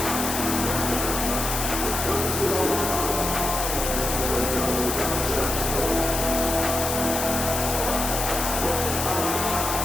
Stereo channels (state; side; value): noise; left; hiss, 2 dB below the sound